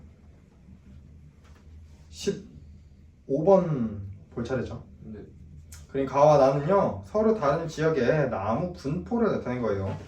15번 볼 차례죠. 네. 그림 가와 나는요 서로 다른 지역의 나무 분포를 나타낸 거예요.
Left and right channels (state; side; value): identical; both; correlation 1.00